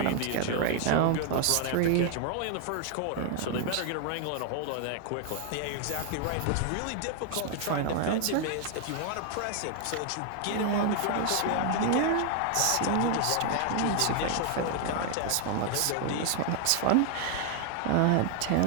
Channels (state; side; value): different; both; correlation 0.00